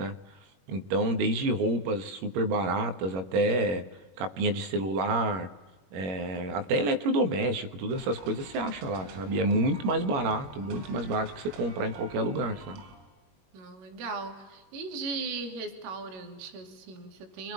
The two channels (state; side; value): late; left; 21 ms